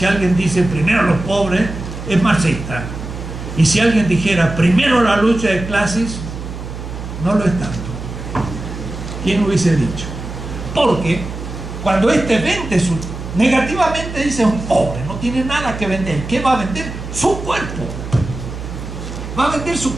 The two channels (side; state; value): right; noise; hum, 9 dB below the sound